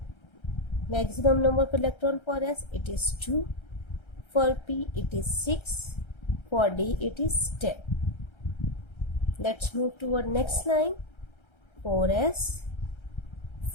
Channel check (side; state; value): right; late; 1.3 ms